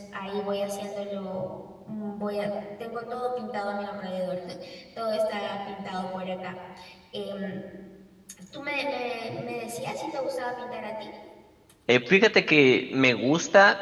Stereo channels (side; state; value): both; identical; correlation 1.00